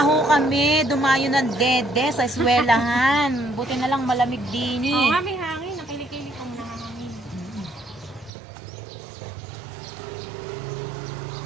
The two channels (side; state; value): left; drops out; at 8.3 s